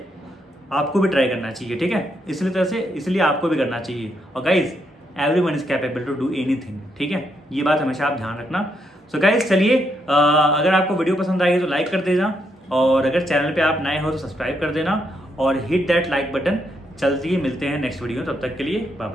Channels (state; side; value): normal; both; correlation 0.78